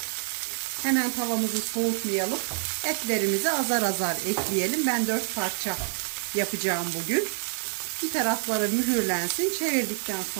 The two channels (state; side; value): silent; left; 60 dB below the other